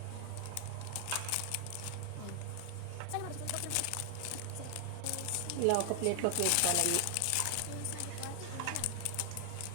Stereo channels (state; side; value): different; both; correlation 0.00